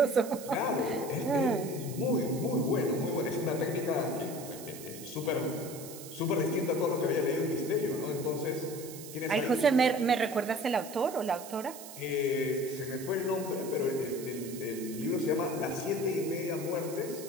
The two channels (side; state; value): right; noise; hiss, 13 dB below the sound